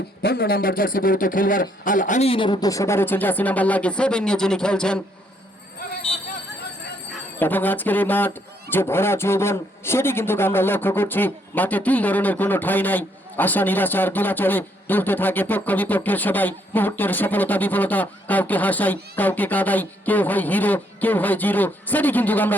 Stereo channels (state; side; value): normal; both; correlation 0.71